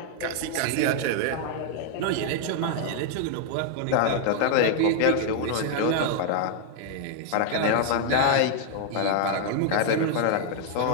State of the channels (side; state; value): both; different; correlation 0.00